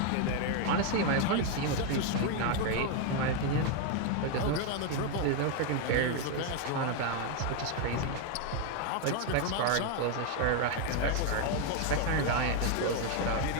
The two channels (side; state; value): both; different; correlation 0.01